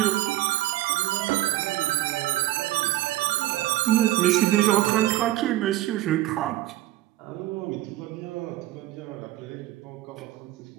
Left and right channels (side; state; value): left; quieter; 15.4 dB